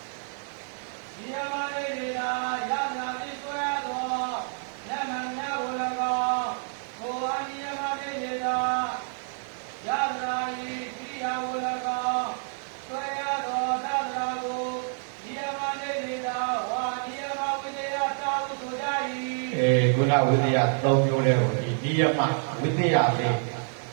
နိယမနေတေတယနာတိဆွဲသောနမညကို၎င်းကိုအာနိယမနေတေတယနာဤကိရိယာကို၎င်းဆွဲရသောတတနာကိုနိယမနေတေတဝါနိယမဝိသေယသာဟုဆိုကြ၏ခုနဝိသေယ၃မျိုးလဲကိုဒီနိယမဝိသေယလေး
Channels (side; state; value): left; silent; 59 dB below the other